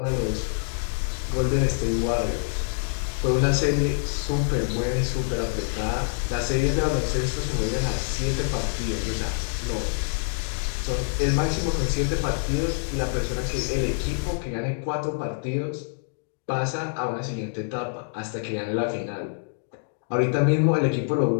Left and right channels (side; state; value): right; silent; digital silence